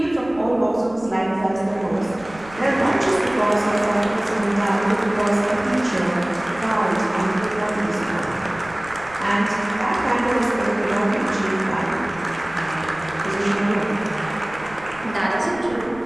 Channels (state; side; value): noise; right; rumble, 21 dB below the sound